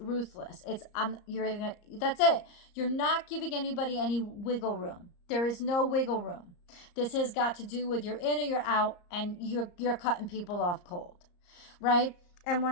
That's it. You're not giving anybody any wiggle room. There is no wiggle room. This has got to do with you're in or you're out, and you're cutting people off cold. Right? And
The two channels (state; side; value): late; right; 34 ms